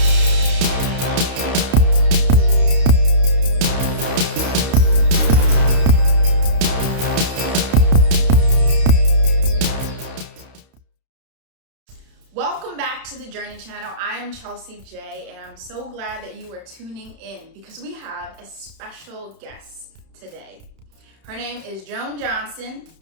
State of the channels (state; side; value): late; left; 31 ms